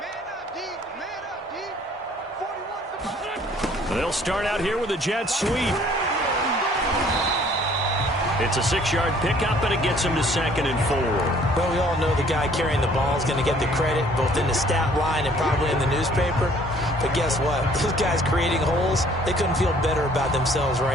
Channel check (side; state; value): both; normal; correlation 0.58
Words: They'll start out here with a jet sweep. It's a 6-yard pickup, and it gets him to 2nd and 4. Well, we all know the guy carrying the ball is going to get the credit, both in the stat line and probably in the newspaper. But guess what? Those guys creating holes, they couldn't feel better about themselves